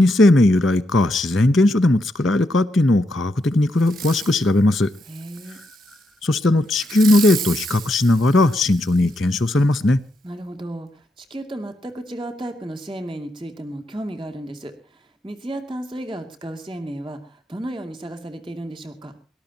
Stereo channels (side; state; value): both; normal; correlation 0.81